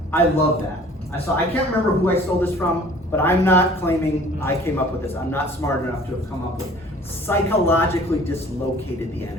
I love that. I can't remember who I stole this from, but I'm not claiming I came up with this. I'm not smart enough to have come up with psychologically dislocated the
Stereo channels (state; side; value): normal; both; correlation 0.50